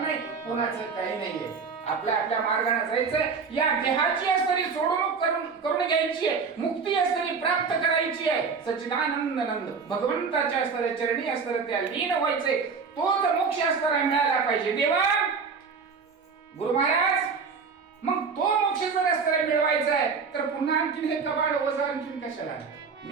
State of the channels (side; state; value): left; quieter; 5.3 dB